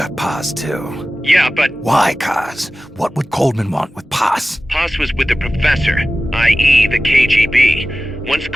Paz, too. Yeah, but... Why, Kaz? What would Coleman want with Paz? Paz was with the professor, i.e. the KGB. Once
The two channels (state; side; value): normal; both; correlation 0.95